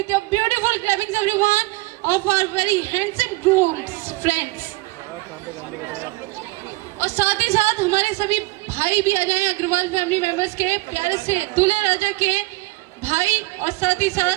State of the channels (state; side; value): quieter; left; 22.1 dB